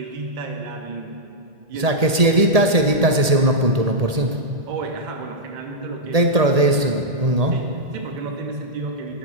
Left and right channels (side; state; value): left; late; 1.8 ms